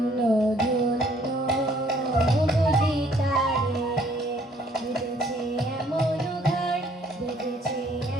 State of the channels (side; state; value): both; normal; correlation 0.62